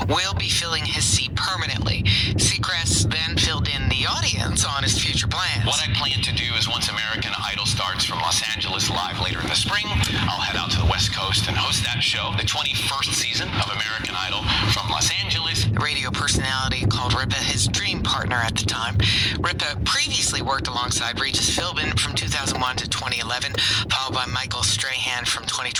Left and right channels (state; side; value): identical; both; correlation 1.00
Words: will be filling his seat permanently. Seacrest then filled in the audience on his future plans. What I plan to do is once American Idol starts from Los Angeles live later in the spring, I'll head out to the West Coast and host that show, the 21st season of American Idol from Los Angeles. The radio personality called Ripa his dream partner at the time. Ripa previously worked alongside Regis Philbin from 2001 to 2011, followed by Michael Strahan from